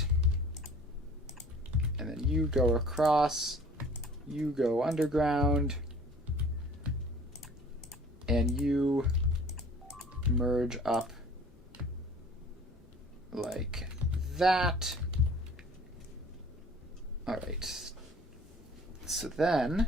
And then you go across, you go underground, and you merge up like that. Alright. So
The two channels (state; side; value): normal; both; correlation 0.50